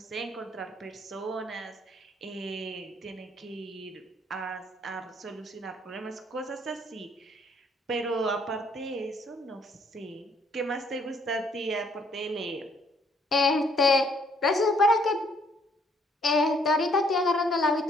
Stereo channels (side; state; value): both; normal; correlation 0.66